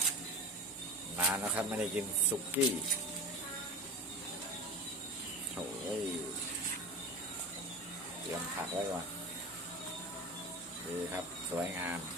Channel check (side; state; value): both; normal; correlation 0.30